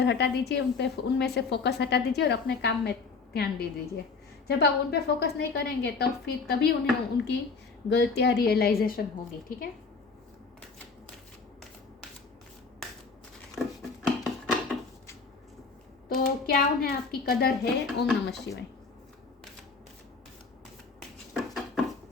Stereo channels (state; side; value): quieter; right; 4.6 dB